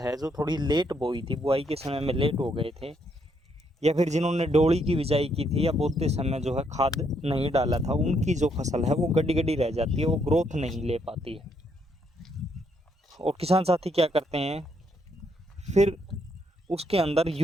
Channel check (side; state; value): both; normal; correlation 0.73